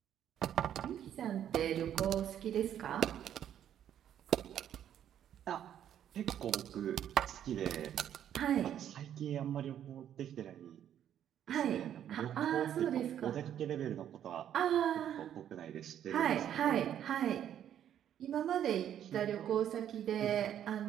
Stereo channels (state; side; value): quieter; left; 10.2 dB